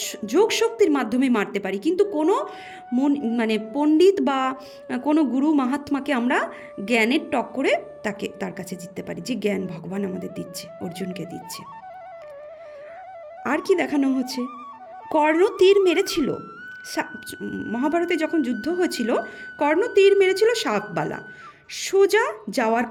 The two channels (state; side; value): identical; both; correlation 1.00